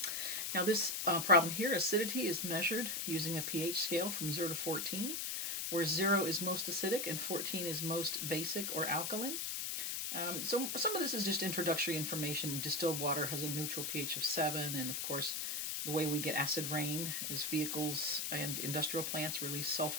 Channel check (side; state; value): left; noise; hiss, 1 dB below the sound